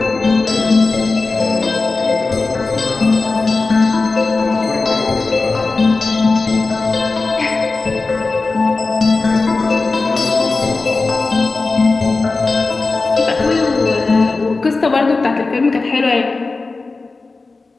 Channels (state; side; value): quieter; right; 3.8 dB